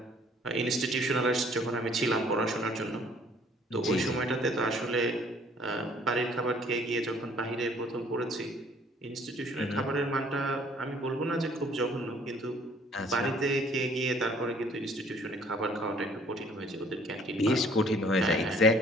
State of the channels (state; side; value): normal; both; correlation 0.58